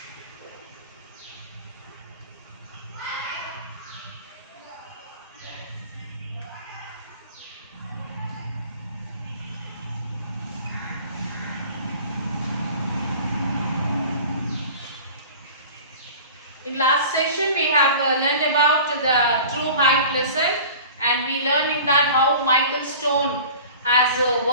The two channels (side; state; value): both; inverted; correlation -0.41